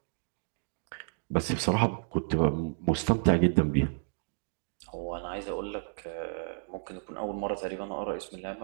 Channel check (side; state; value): left; silent; digital silence